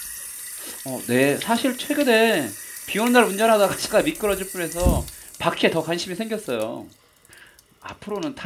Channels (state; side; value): identical; both; correlation 1.00